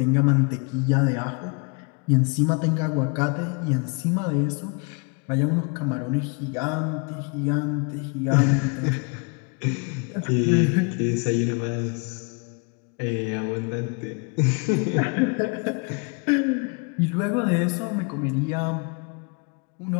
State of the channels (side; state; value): right; quieter; 33.0 dB